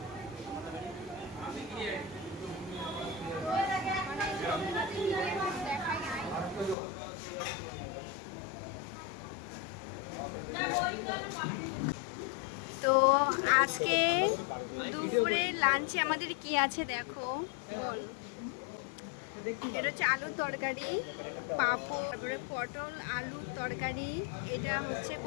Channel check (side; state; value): right; drops out; at 6.8 s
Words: তো আজকে দুপুরে লাঞ্চে আমাদের কি আছে দেখো। এটা হচ্ছে আলুর তরকারি, পাঁপড়, তারপরে পটল আলুর তরকারি। এটা হচ্ছে